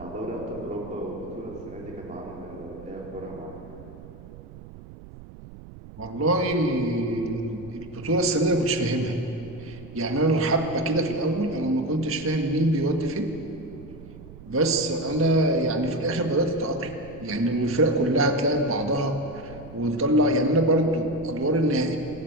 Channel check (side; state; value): right; noise; rumble, 17 dB below the sound